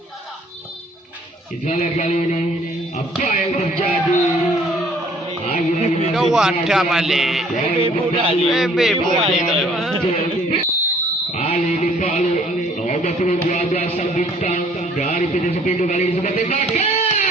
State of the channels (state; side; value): normal; both; correlation 0.58